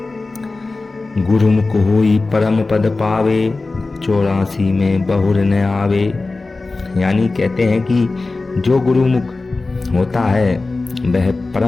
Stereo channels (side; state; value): right; quieter; 3.5 dB